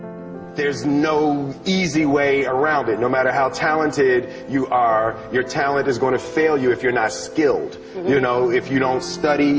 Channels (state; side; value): identical; both; correlation 1.00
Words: There's no easy way around it. No matter how talented you are, your talent is going to fail you if you're not skilled. You know, if you don't